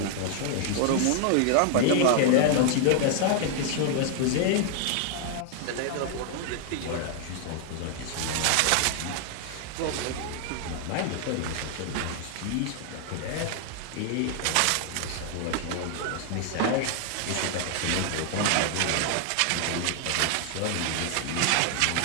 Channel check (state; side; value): different; both; correlation 0.00